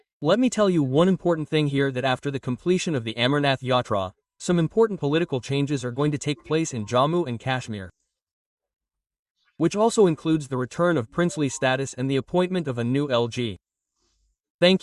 Let me tell you one important thing here, that after the completion of the Amarnath Yatra, some important political changes are going to take place in Jammu and Kashmir, which also includes the return of princely status and the appointment of a new LG.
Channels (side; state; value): both; identical; correlation 1.00